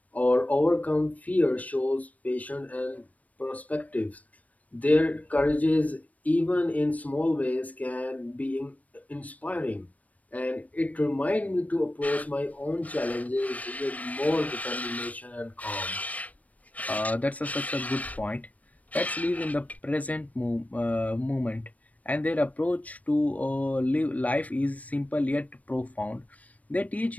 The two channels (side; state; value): right; late; 0.071 ms